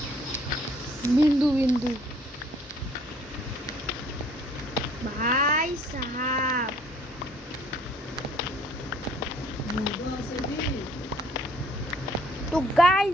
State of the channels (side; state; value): both; normal; correlation 0.58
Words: বিন্দু বিন্দু ভাই সাহাব তো